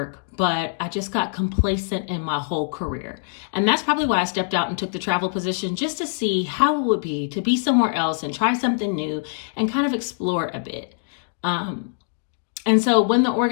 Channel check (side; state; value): right; silent; digital silence